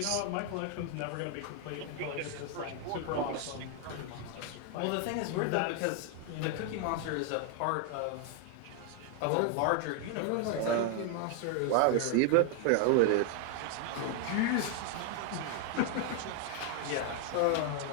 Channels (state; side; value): different; both; correlation 0.00